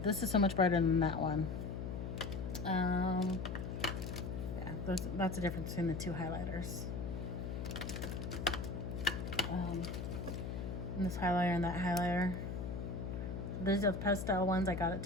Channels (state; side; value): noise; left; hum, 4 dB below the sound